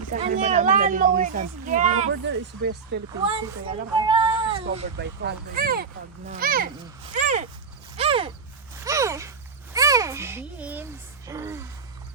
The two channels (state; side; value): quieter; left; 5.4 dB